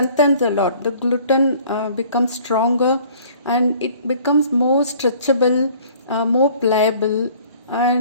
a lot. The gluten becomes stronger and it becomes more stretchable, more pliable,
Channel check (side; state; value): both; inverted; correlation -0.54